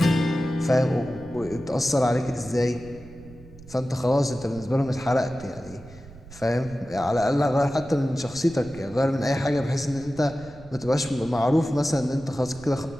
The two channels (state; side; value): noise; right; rumble, 19 dB below the sound